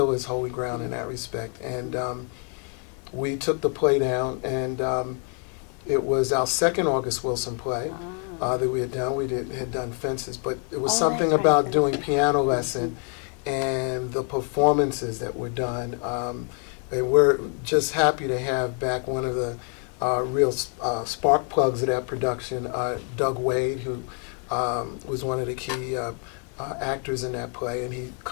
is Holy Ground in that respect. And we took the play down, and it was our second August Wilson play that we had done. We had done Fences, but it was something that's right, about Fences. doing Piano Lesson and the performances that were done. And we're just happy to have back one of the real spark plugs of that production, Doug Wade, who was one of the key actors in that play, and he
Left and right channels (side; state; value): right; quieter; 38.6 dB